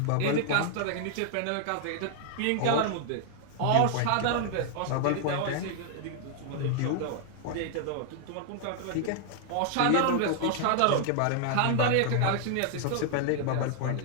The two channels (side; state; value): both; different; correlation 0.00